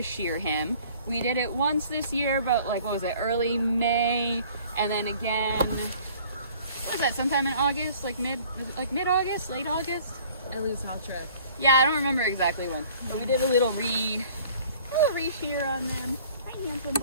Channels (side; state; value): both; inverted; correlation -0.52